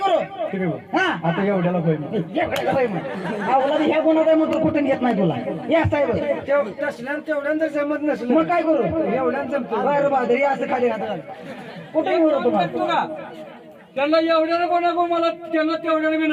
हा आता एवढ्याला होईल. ह्या गुन्हा काय मग कुठून घेत नाही तुला. या साहेब तेवढ्यानं जमत नसलं मग काय करू? एवढ्यानं जमत बरं बहादरी असं खाली घातलं कुठे घेऊ तुम्हाला. त्यांना एवढ्याला पण नको मला त्यांना तेवढ्याला बी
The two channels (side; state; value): both; identical; correlation 1.00